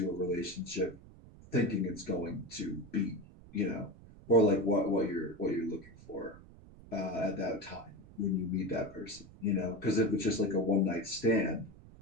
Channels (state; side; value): noise; right; rumble, 20 dB below the sound